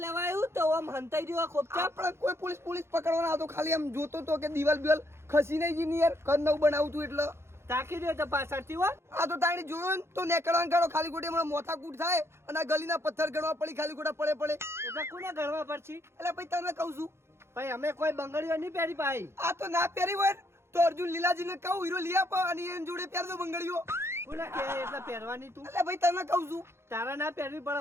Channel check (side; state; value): left; late; 0.12 ms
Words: આવ્યું તો આમ હંતાઈ રહ્યો ખોપચા આપણે કોઈ પોલીસ પકડવાના આવતો ખાલી આમ જોતો તો કે દિવાલ બિવાલ ખસી નહીં જી યાર ઘર નવું બનાવું તું એટલે તાકી દે તો પાછળથી હો આ તો તાણી જોયો ને તો નેકળવાનું કાઢો ખાલી ખોટી હમણાં મોથા કૂટ થાય અને આ ગલીના પથ્થર ગણવા પડી ખાલી ખોટા પડે એટલે કોને ગણવા પડશે એટલે ભાઈ તને કહું છું ભાઈ અમે કોઈ બંગડીઓ નહીં પહેરી ભાઈ આ તો ના પહેરી હોય ને તો અર્જુન લીલાજીને કહું હીરો લઈ આપો અને એની જોડે પહેર દો બંગડીઓ કોને કે એટલે પહેરવાની તું એટલે ભાઈ તને કહું છું તારા ના પહેરવી